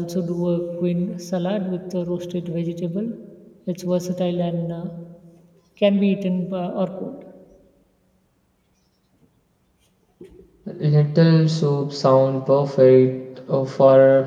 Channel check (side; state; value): both; identical; correlation 1.00